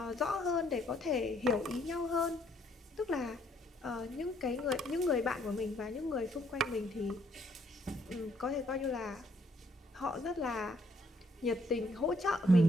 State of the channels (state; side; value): normal; both; correlation 0.68